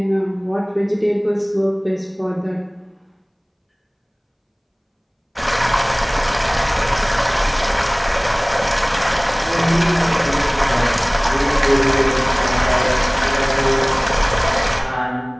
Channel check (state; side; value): identical; both; correlation 1.00